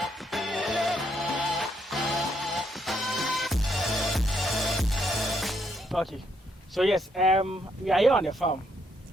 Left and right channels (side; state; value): both; normal; correlation 0.74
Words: Okay, so yes, we are here on the farm.